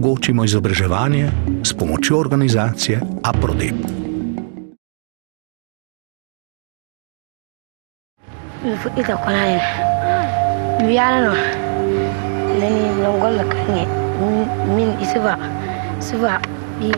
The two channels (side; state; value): left; silent; 64 dB below the other